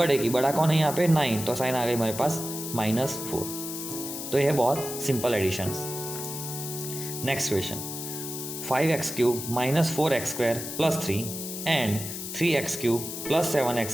की, बड़ा कौन है यहाँ पे 9, तो साइन आ गई हमारे पास -4। तो यह बहुत simple additions. Next question 5x³ minus 4x square plus 3 and 3x³ plus 7x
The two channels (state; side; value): noise; left; hiss, 7 dB below the sound